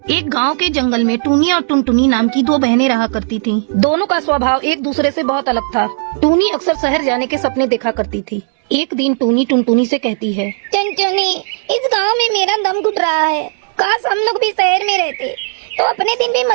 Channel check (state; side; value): silent; left; 68 dB below the other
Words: एक गांव के जंगल में टूनी और टुनटुनी नाम की दो बहनें रहा करती थीं। दोनों का स्वभाव एक दूसरे से बहुत अलग था। टूनी अक्सर शहर जाने के सपने देखा करती थी। एक दिन टूनी टुनटुनी से कहती है, टुनटुनी, इस गांव में मेरा दम घुट रहा है। काश हम लोग भी शहर में रहते तो अपने दिन भी